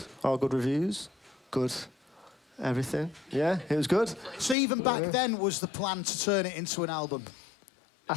All good reviews. Good everything. Yeah, it was good. So even back then was the plan to turn it into an album? I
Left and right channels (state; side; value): drops out; right; at 4.5 s